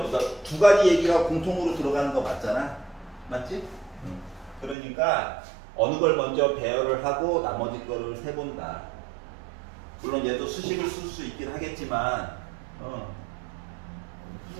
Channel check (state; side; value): drops out; left; at 4.8 s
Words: 2가지 얘기가 공통으로 들어가는 거 맞잖아? 맞지? 그러니까, 어느 걸 먼저 배열을 하고, 나머지 거를 세본다. 물론 얘도 수식을 쓸 수 있긴 하겠지만,